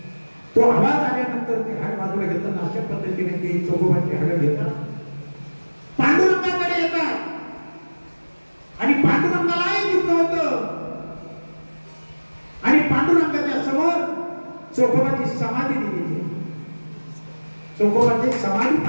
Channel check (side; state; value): both; inverted; correlation -1.00